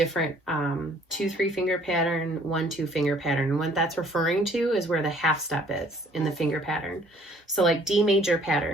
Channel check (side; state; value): both; normal; correlation 0.58